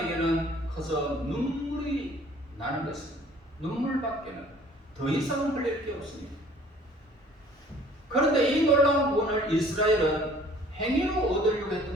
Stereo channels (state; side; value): normal; both; correlation 0.54